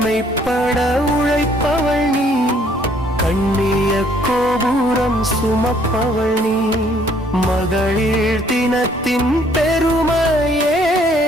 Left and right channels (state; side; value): normal; both; correlation 0.63